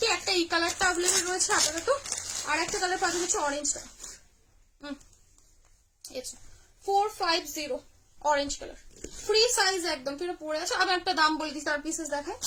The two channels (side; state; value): both; identical; correlation 1.00